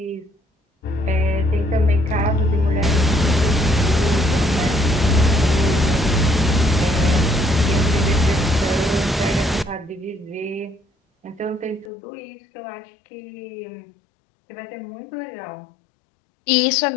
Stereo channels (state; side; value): drops out; right; at 11.9 s